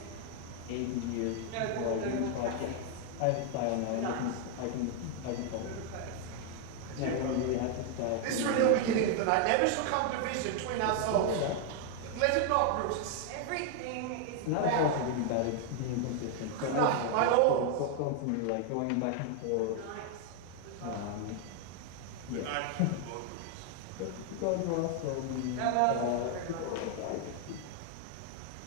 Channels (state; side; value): different; both; correlation 0.00